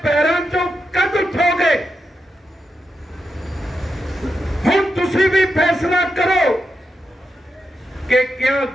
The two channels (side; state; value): both; normal; correlation 0.87